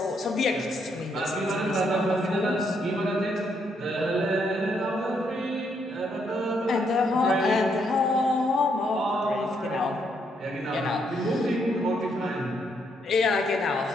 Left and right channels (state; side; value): normal; both; correlation 0.75